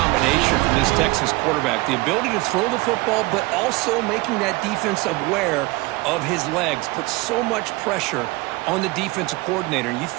from this Texas quarterback. The ability to throw the football, but also making that defense aware of his legs. Puts so much pressure on the defensive coordinator. You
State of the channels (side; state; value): left; quieter; 22.5 dB